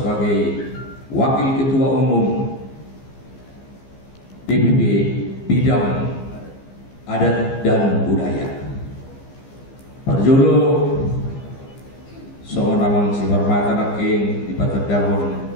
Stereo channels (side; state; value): right; late; 15 ms